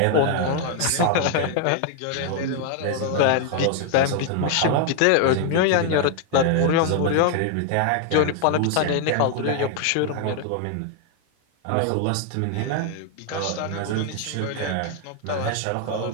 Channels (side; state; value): both; different; correlation 0.00